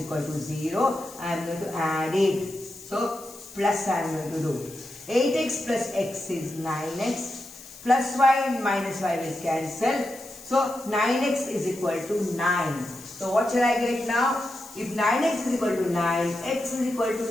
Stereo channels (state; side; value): noise; left; hiss, 18 dB below the sound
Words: equal to 0. I am going to add it. So, plus I am going to do. 8x plus x is 9x. Plus y and minus y will cancel. So, 9x is equal to 9. So, what shall I get now? If 9x is equal to 9, x is equal